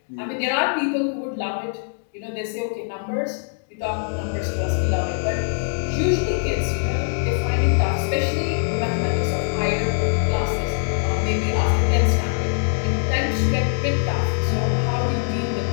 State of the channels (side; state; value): right; silent; digital silence